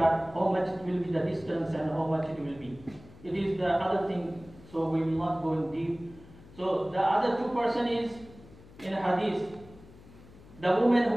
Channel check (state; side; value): noise; left; hum, 21 dB below the sound